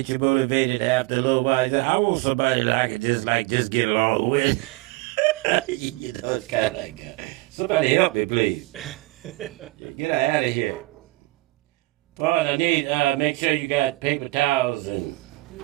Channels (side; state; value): left; quieter; 21.3 dB